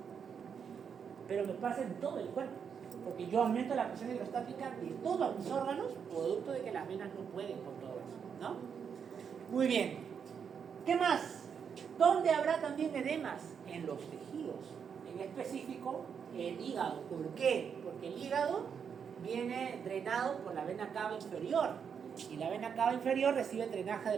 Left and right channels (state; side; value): quieter; left; 7.0 dB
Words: Pero me pasa en todo el cuerpo, porque yo aumento la presión hidrostática de todos mis órganos, producto de que las venas no pueden con todo eso, ¿no? Muy bien. ¿Qué más? ¿Dónde habrá también edemas? En los tejidos. En específico, el hígado. ¿Por qué? Porque el hígado viene drenado por la vena cava inferior. Y la vena cava inferior recibe drenaje